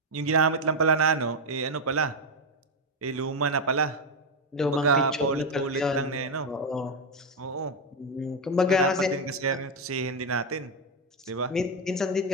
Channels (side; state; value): both; normal; correlation 0.06